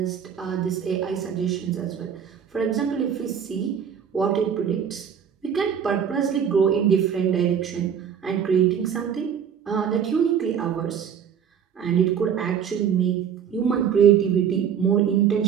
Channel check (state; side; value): quieter; left; 8.0 dB